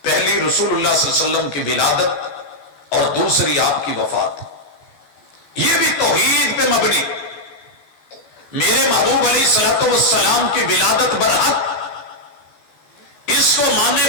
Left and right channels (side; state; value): right; late; 14 ms